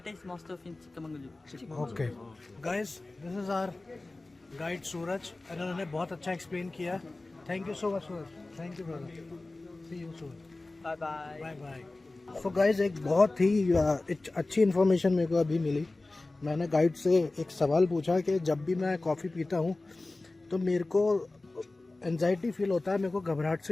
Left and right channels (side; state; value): right; quieter; 3.0 dB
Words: is most of in Chikmagalur. Okay. Guys, this is our guide Suraj. and उन्होंने बहुत अच्छा explain किया. Thank you so much, Suraj. Thank you, brother. See you soon. Bye bye. Bye bye. So guys एक बहुत ही अच्छी information मेरे को अभी मिली. मैंने गाइड से एक सवाल पूछा कि जब भी मैं कॉफ़ी पीता हूँ तो मेरे को एंजाइटी फील होता है, मेरे को घबराहट